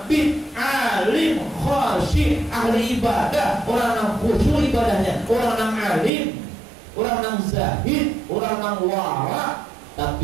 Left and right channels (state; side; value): drops out; left; at 6.1 s